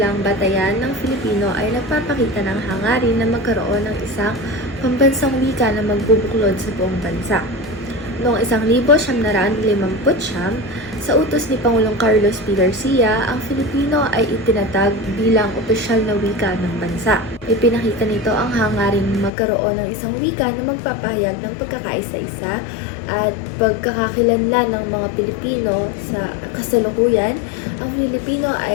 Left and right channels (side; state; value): right; drops out; at 19.3 s